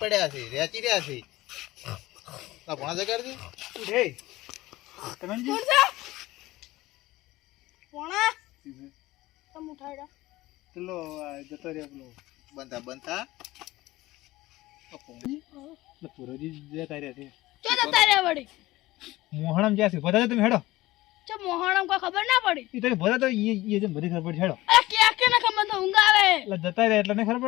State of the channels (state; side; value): quieter; right; 18.1 dB